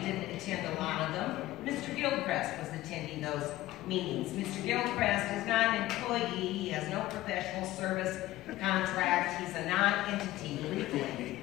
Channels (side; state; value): right; quieter; 16.1 dB